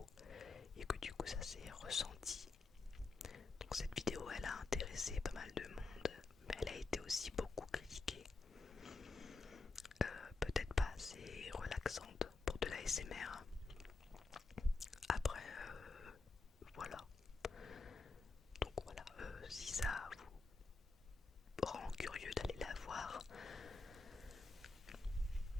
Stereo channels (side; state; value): right; quieter; 3.8 dB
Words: et que du coup ça s'est ressenti. Donc cette vidéo, elle a intéressé pas mal de monde, mais elle a été aussi beaucoup critiquée. Peut-être pas assez relaxante pour de la l'ASMR. Après, voilà. Donc voilà, si ça vous rend curieux d'aller la voir,